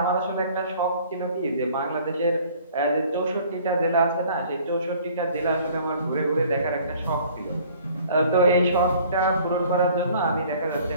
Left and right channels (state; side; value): inverted; both; correlation -0.54